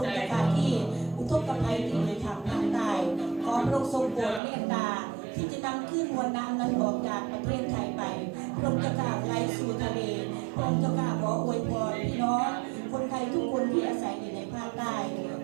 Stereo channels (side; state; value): left; drops out; at 4.4 s